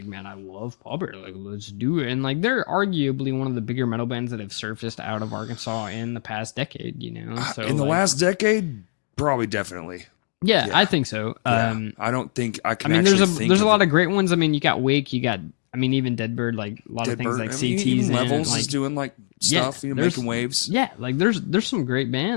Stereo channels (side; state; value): right; silent; digital silence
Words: man, I love Pallbearer, like let's do it. And like they're arguably one of the bigger metal bands that have surfaced out of Arkansas in the past decade, you know. So in the last decade, probably definitely. Yeah, I think so. Yeah. I don't think I can. I mean, there's a lot of great ones. I mean, you got Wake, you got. I mean, even Deadbird, like a lot of things like CTs even Levels like, is doing like stuff, you know, making waves. Yeah, like there's some great